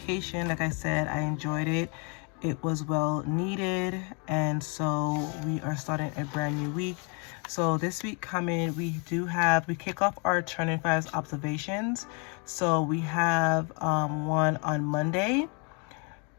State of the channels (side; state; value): right; quieter; 36.4 dB